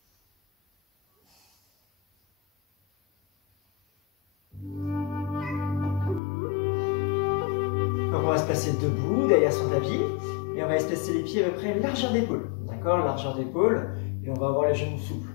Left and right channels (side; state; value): right; drops out; at 6.2 s